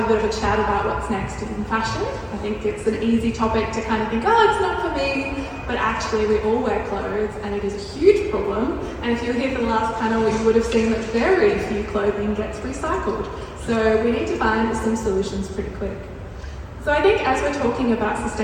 a bit of a chat about what's next in fashion. I think it's an easy topic to kind of think, oh, it's not for me, but actually we all wear clothes and it is a huge problem. And if you were here for the last panel, you would have seen that very few clothing gets recycled. So we need to find some solutions pretty quick. So I think as we're talking about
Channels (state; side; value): identical; both; correlation 1.00